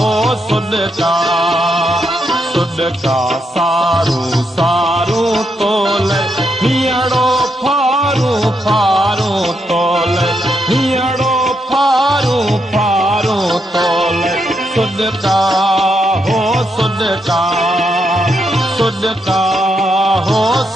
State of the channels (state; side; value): normal; both; correlation 0.80